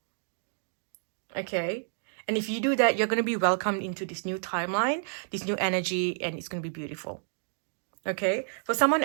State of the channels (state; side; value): silent; left; digital silence